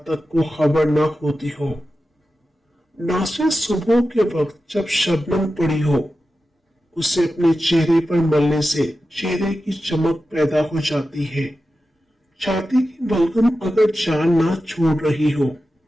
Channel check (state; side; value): normal; both; correlation 0.92